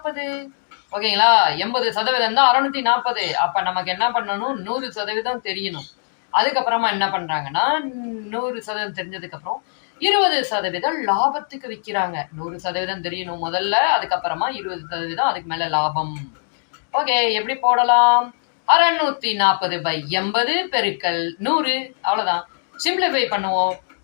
ஓகேங்களா? 80% தான் 640. அப்ப நமக்கு என்ன பண்ணணும், 100% தெரியணும். அதுக்கப்புறமா என்ன பண்றாங்கன்னா, 100% தெரிஞ்சதுக்கு அப்புறம் 20% லாபத்துக்கு விக்கிறாங்க. 100% தெரியணும் முதல்ல, அதுக்கப்புறமா 20% அதுக்கு மேல லாபம். ஓகே, எப்படி போடலாம்? 640/80 பெருக்கல் 100. அவ்வளவுதான். சிம்பிளிஃபை பண்ணுவோம்.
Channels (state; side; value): silent; right; digital silence